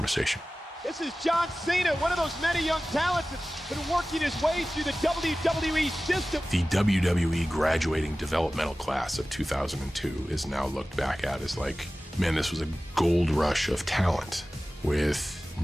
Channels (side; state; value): both; normal; correlation 0.96